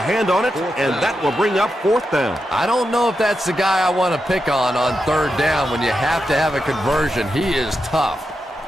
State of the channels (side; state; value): both; normal; correlation 0.87